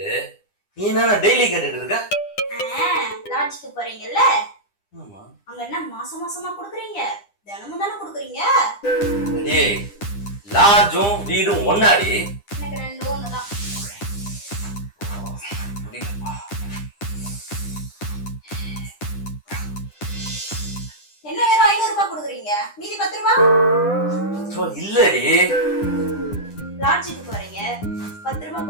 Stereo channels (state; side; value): late; right; 9.9 ms